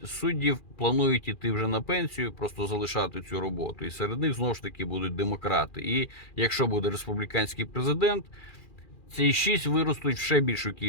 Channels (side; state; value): right; late; 2.4 ms